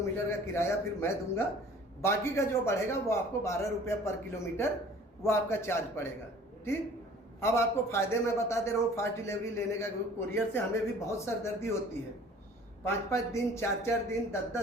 का किराया फिर मैं दूंगा। बाकी का जो बढ़ेगा वो आपको 12 रुपये पर किलोमीटर वो आपका चार्ज पड़ेगा, ठीक। अब आपको फ़ायदे मैं बता दे रहा हूँ फास्ट डिलीवरी लेने का। कोरियर से हमें भी बहुत सरदर्दी होती है, 5-5 दिन, 4-4 दिन,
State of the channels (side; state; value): both; normal; correlation 0.49